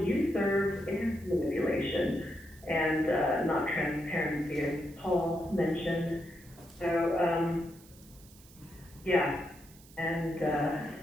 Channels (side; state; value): right; noise; hiss, 24 dB below the sound